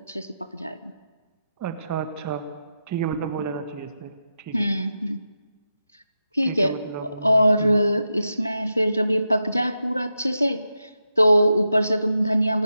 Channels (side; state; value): both; inverted; correlation -0.88